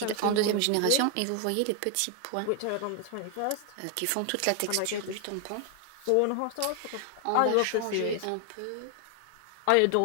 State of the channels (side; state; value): both; different; correlation 0.00